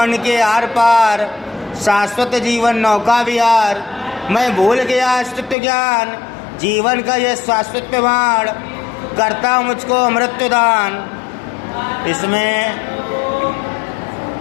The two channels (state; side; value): drops out; right; at 5.6 s